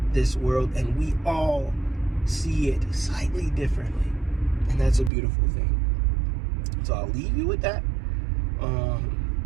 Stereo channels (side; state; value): left; drops out; at 5.1 s